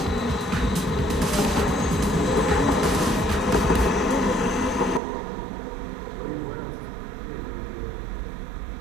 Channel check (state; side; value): drops out; left; at 5.0 s